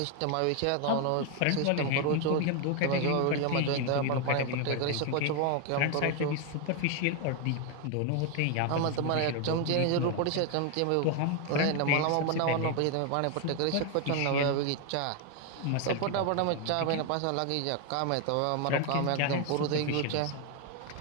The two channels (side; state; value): both; different; correlation 0.01